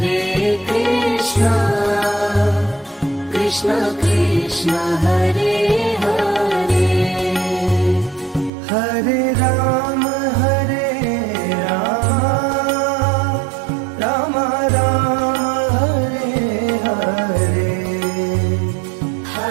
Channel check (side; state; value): left; drops out; at 8.5 s